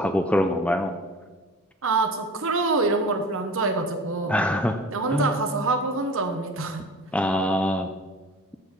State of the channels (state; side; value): normal; both; correlation 0.40